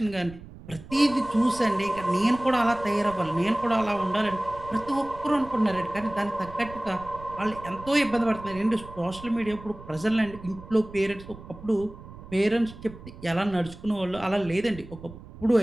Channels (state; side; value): noise; right; rumble, 16 dB below the sound